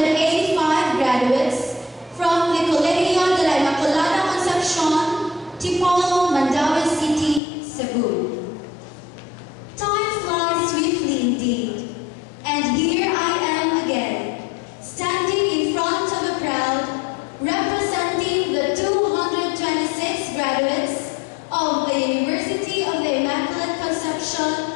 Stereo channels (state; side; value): drops out; right; at 7.4 s